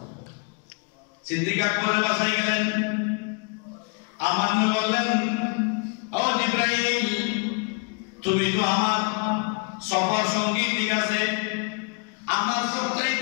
সিদ্দিক আকবরের বাসায় গেলেন, আমার নবী বললেন, ও জিবরাইল, তুমি তো আমার সফর সঙ্গী, ঠিক আছে, আমার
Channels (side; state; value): right; quieter; 36.0 dB